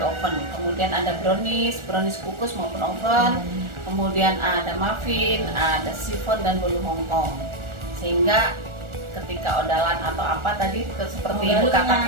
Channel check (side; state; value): left; late; 1.4 ms